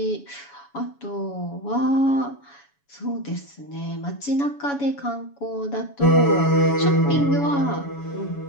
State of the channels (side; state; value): right; late; 7.1 ms